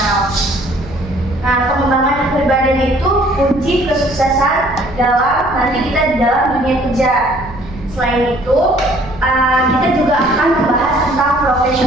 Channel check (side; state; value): right; noise; rumble, 16 dB below the sound